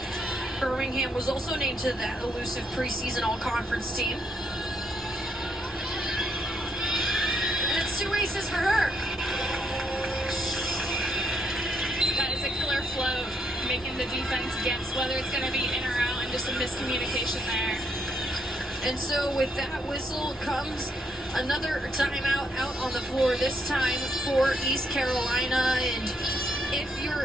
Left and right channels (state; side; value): normal; both; correlation 0.75